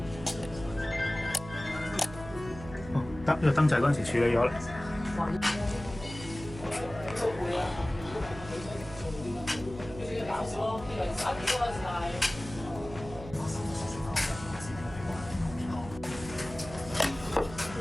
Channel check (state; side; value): noise; right; hum, 13 dB below the sound